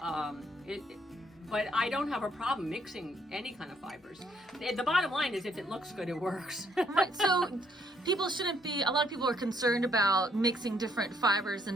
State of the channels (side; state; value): both; normal; correlation 0.69